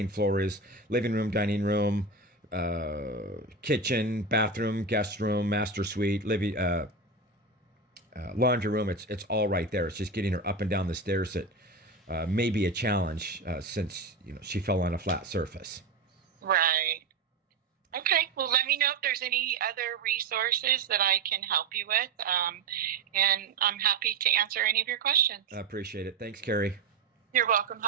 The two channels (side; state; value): left; quieter; 3.8 dB